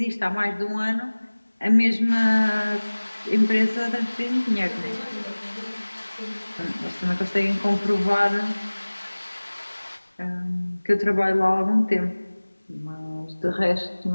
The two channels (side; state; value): both; inverted; correlation -1.00